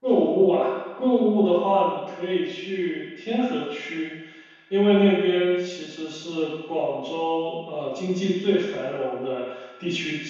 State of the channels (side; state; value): both; identical; correlation 1.00